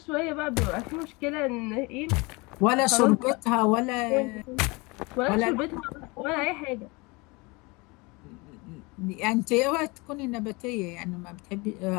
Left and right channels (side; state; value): right; quieter; 26.2 dB